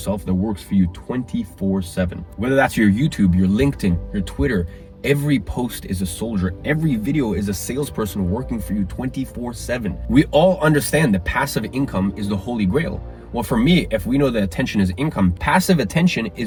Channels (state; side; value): identical; both; correlation 1.00